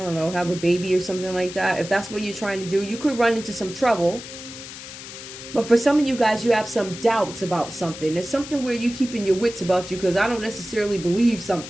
know, have a baby or something like that, if that's what you're trying to do, you could run into some trouble. But for some of you guys, you have some doubts about something. There's something where you're keeping your wits about you because I don't necessarily believe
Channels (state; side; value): noise; left; hiss, 12 dB below the sound